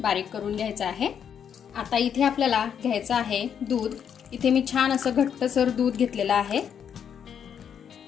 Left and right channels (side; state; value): right; quieter; 8.1 dB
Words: करून घ्यायचं आहे। आता इथे आपल्याला घ्यायचं आहे दूध। इथे मी छान असं घट्टसर दूध घेतलेलं आहे।